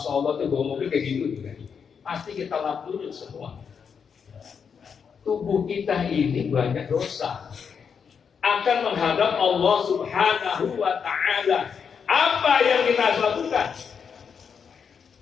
Allah tuh bawa mobil kayak gitu juga. Pasti kita lap dulu semua. Tubuh kita ini banyak dosa, akan menghadap Allah Subhanahu wa Ta'ala. Apa yang kita harus lakukan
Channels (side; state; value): right; quieter; 6.6 dB